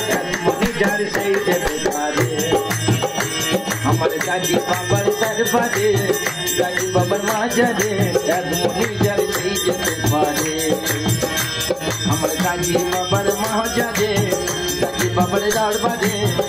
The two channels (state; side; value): identical; both; correlation 1.00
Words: এক মনি যার সেই যেতে পারে। আমার কাজী বাবার দরবারে কাজী বাবার মাজারে এক মনি যার সেই যেতে পারে। আমার কাজী বাবার মাজারে কাজী বাবার দরবারে